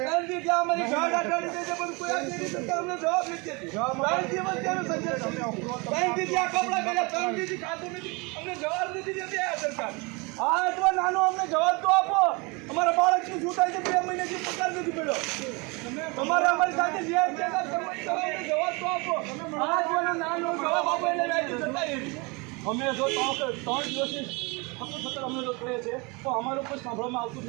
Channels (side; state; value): left; quieter; 28.3 dB